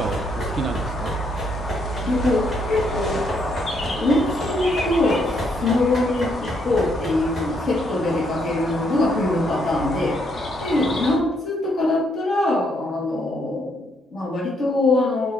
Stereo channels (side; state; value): both; normal; correlation 0.73